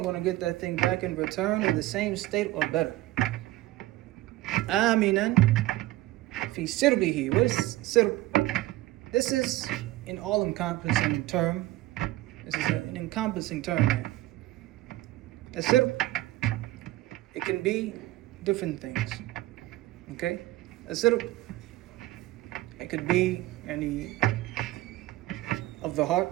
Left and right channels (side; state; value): left; quieter; 16.9 dB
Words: going to get that thing back in return in the same state or better. Aminan fi sirbihi. What is sirb? This is an all-encompassing term. This is an encompassing term here. A sirb, it can be different things. Okay? A sirb, it could be any of the